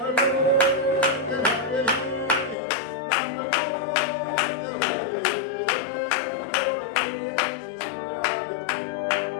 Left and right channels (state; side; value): drops out; right; at 2.6 s